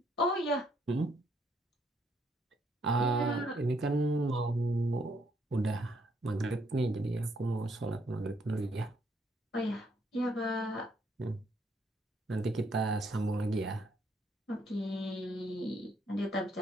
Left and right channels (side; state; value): both; normal; correlation 0.71